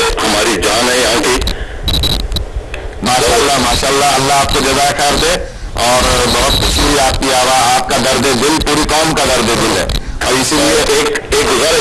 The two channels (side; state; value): both; identical; correlation 1.00